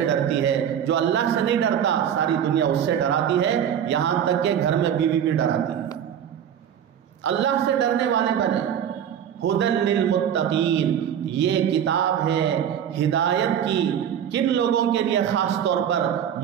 ڈرتی ہے، جو اللہ سے نہیں ڈرتا ساری دنیا اس سے ڈراتی ہے، یہاں تک کہ گھر میں بیوی بھی ڈراتی ہے۔ اللہ سے ڈرنے والے بنے۔ ہدی للمتقین، یہ کتاب ہے ہدایت کی، کن لوگوں کے لیے؟ خاص طور پر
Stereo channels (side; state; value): left; quieter; 9.2 dB